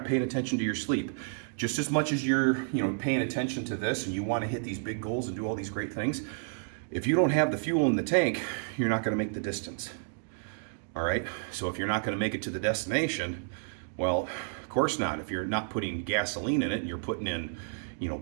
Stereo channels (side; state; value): left; silent; digital silence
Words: paying attention to your sleep, just as much as you're paying attention to this and you want to hit these big goals and do all these great things, if you don't have the fuel in the tank, you're not going to make the distance. All right, so if you're not going to make it to the destination, well, of course not. If you're not putting gasoline in it and you're putting in